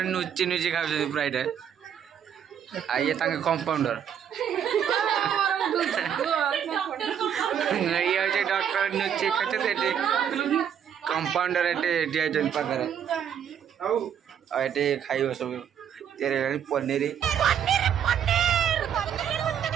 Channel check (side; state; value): left; quieter; 8.7 dB